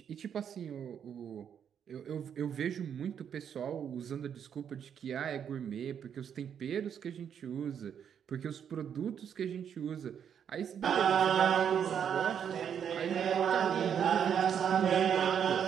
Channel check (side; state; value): left; quieter; 8.2 dB